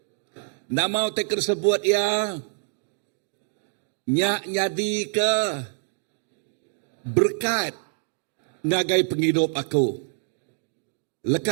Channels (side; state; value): left; silent; digital silence